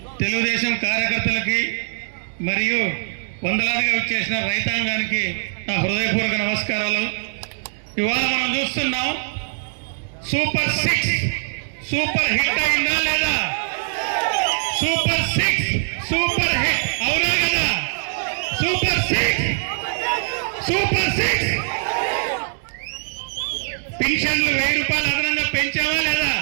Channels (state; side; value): silent; left; digital silence